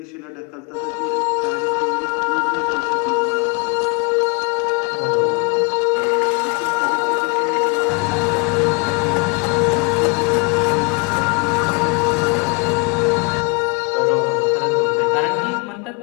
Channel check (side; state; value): right; quieter; 31.6 dB